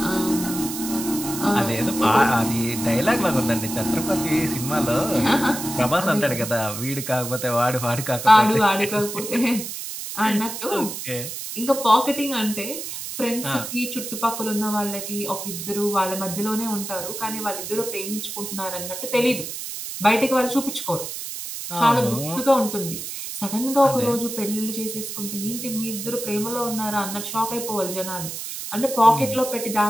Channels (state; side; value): noise; right; hiss, 7 dB below the sound